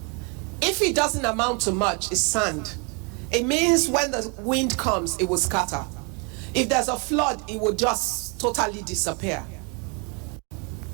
If it doesn't amount to much, it's sand. It means when the wind comes, it will scatter. If there's a flood, it will just totally disappear.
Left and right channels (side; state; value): left; quieter; 32.4 dB